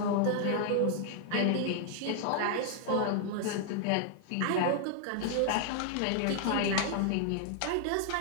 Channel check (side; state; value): both; different; correlation -0.01